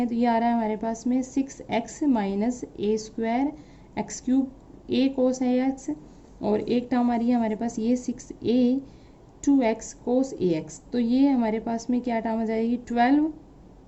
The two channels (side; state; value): both; identical; correlation 1.00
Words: तो ये आ रहा है हमारे पास में 6x minus a square x cube A cos a x, और एक टर्म आ रही है हमारे पास ये 6a 2x cos a x. तो ये हमारे पास में क्या टर्म आ जाएगी, 12